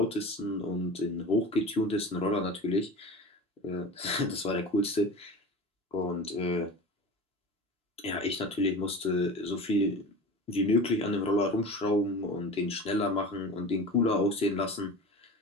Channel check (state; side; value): normal; both; correlation 0.33